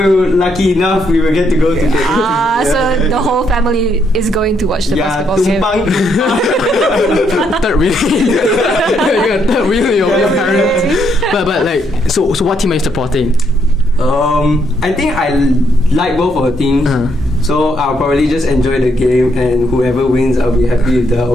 lucky enough we will get to go to the So the whole family is going to watch the basketball game. third wheel. You're third wheel your parents. But like so what team are you supporting? I think I like both of the teams. So I'll probably just enjoy the game, and whoever wins, I'll be happy with the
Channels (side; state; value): both; normal; correlation 0.74